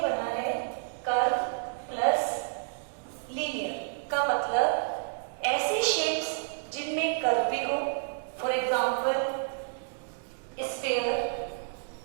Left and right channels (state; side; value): silent; left; digital silence